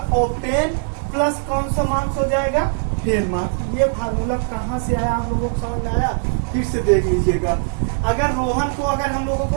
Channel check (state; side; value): silent; left; 58 dB below the other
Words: ऑब्टेन प्लस कौन सा मार्क्स हो जाएगा, फेल मार्क्स। ये फार्मूला कहाँ से आया, आप लोगों को समझ में आया, फिर से देख लीजिएगा। अगर रोहन को अगर हम लोगों